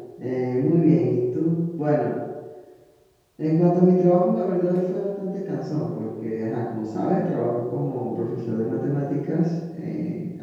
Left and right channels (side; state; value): both; identical; correlation 1.00